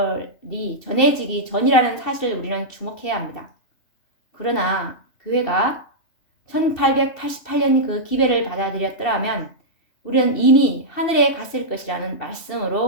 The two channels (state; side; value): late; right; 2.7 ms